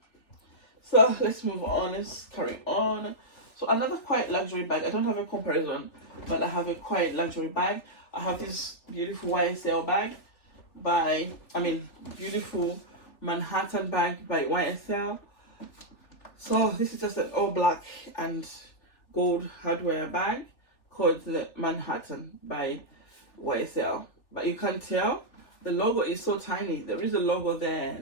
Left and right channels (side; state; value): right; late; 3.4 ms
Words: So let's move on, let's carry on. So another quite luxury bag. I don't have a comparison, but I have a quite luxury bag. I have this beautiful YSL bag beautiful Manhattan bag by YSL. So this is just an all black and gold hardware bag called the Manhattan by YSL. But you can't tell, the logo is so tiny. There is a logo there,